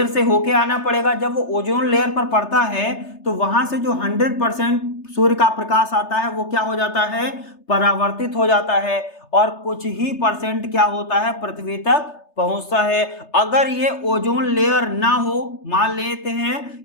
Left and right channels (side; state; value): right; late; 3.3 ms